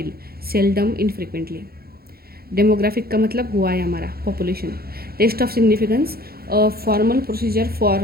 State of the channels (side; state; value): left; late; 0.44 ms